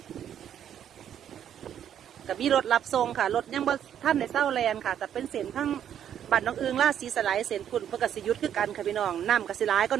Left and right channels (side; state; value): left; quieter; 9.7 dB